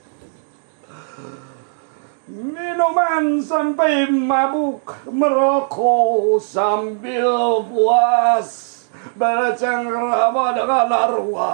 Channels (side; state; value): left; silent; digital silence